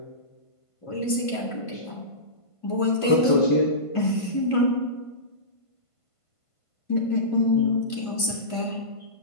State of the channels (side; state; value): right; late; 1.5 ms